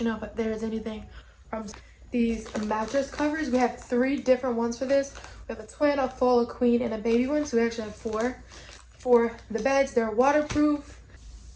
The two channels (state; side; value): identical; both; correlation 1.00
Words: know if there's anything from these mattress covers. We have 3 different ones for this. We have a twin, a full, a queen, and a baby one. So we actually have 4 for the beds. They're waterproof.